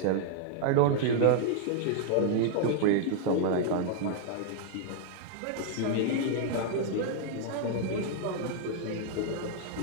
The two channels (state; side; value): different; both; correlation -0.01